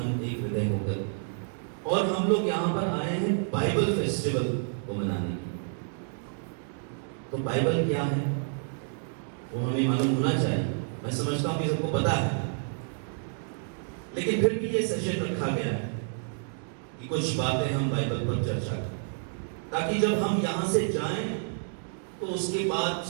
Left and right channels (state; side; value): silent; left; digital silence